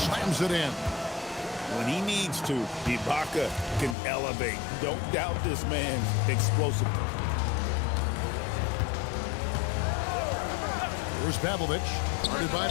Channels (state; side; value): drops out; right; at 4.0 s